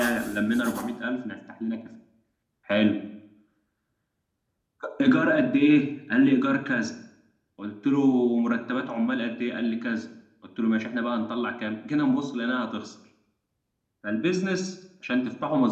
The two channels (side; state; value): both; identical; correlation 1.00